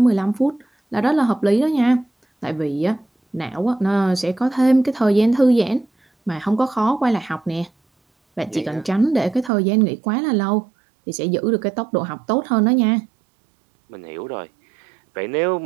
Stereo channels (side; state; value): left; drops out; at 9.5 s